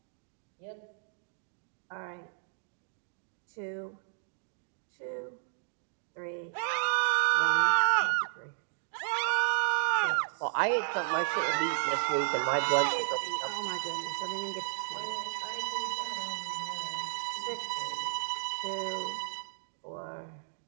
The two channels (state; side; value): silent; left; digital silence